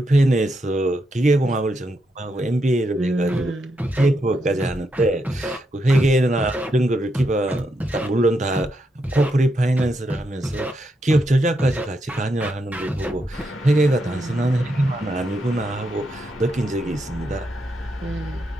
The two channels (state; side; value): normal; both; correlation 0.81